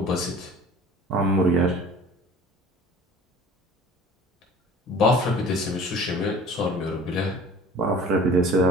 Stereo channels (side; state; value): both; normal; correlation 0.45